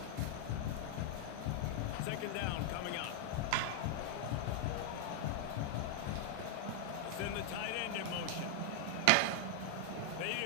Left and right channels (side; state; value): both; different; correlation 0.00